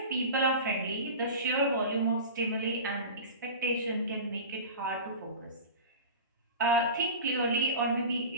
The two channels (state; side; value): inverted; both; correlation -0.32